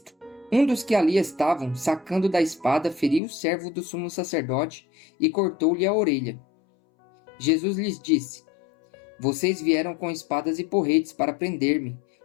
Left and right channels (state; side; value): drops out; right; at 3.2 s